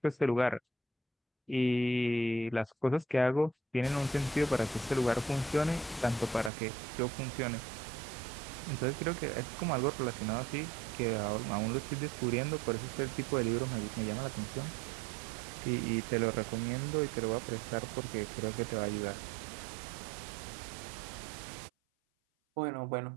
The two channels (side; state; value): left; drops out; at 6.5 s